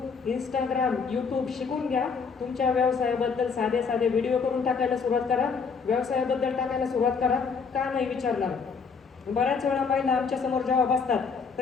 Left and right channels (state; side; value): quieter; right; 5.4 dB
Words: इंस्टाग्राम, यूट्यूब शिकून घ्या. तुमच्या व्यवसायाबद्दल साधे साधे व्हिडिओ करून टाकायला सुरुवात करा. व्यवसायाबद्दल टाकायला सुरुवात करा. का नाही विचारणार. बऱ्याच वेळा महिला आमच्या समोर जेव्हा बसतात